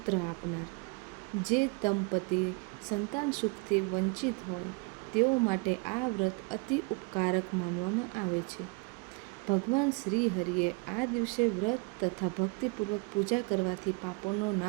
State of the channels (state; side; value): quieter; left; 30.4 dB